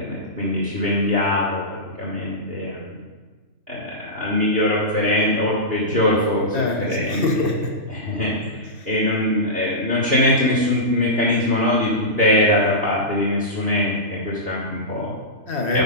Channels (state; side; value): late; left; 2.7 ms